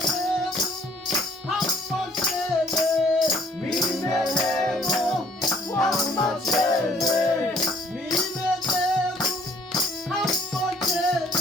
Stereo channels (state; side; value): normal; both; correlation 0.59